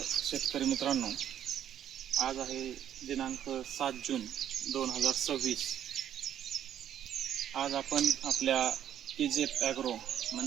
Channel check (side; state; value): left; quieter; 10.2 dB